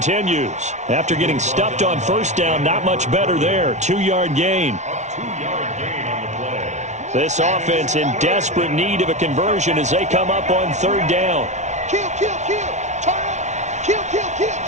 After getting stuffed on first down, not much better there. 2-yard gain. A 2-yard gain on the play. This offense in desperate need of a conversion as they come up on 3rd down. Kill, kill, kill. Turn up. Kill, kill, kill.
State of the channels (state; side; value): late; left; 0.33 ms